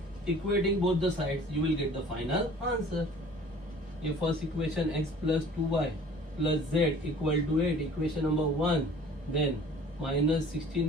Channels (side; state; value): both; normal; correlation 0.48